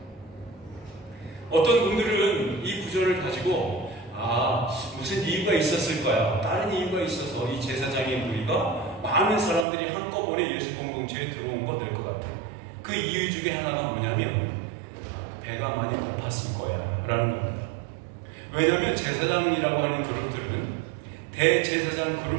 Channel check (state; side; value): drops out; left; at 9.7 s